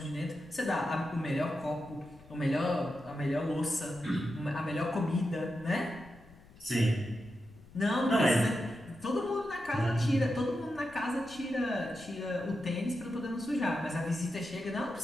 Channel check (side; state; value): left; noise; rumble, 23 dB below the sound